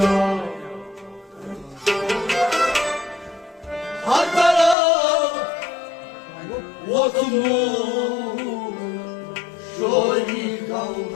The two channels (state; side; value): drops out; right; at 4.8 s